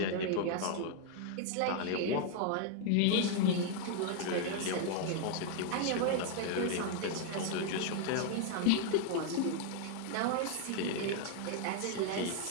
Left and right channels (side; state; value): both; different; correlation 0.00